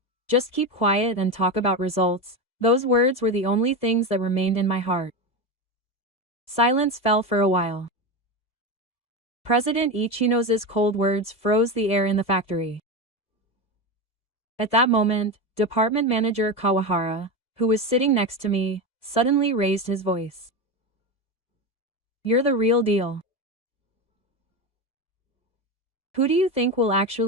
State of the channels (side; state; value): right; late; 1.7 ms